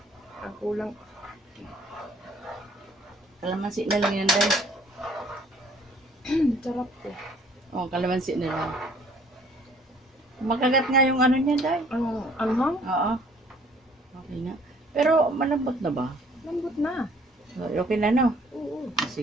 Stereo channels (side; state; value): both; normal; correlation 0.58